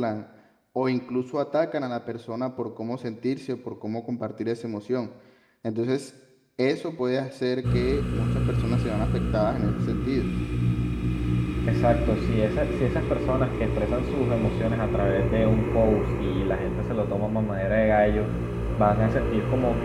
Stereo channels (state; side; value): identical; both; correlation 1.00